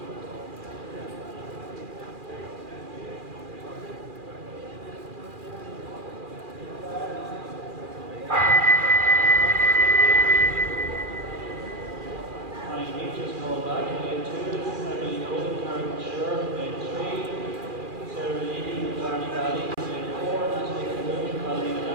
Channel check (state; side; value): late; left; 2.4 ms